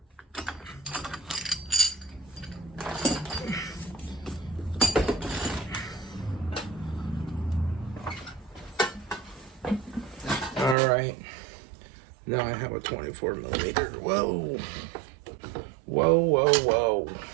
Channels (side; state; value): left; drops out; at 10.8 s